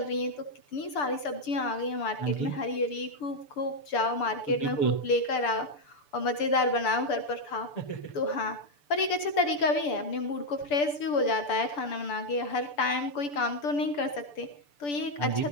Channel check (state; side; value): late; right; 6.9 ms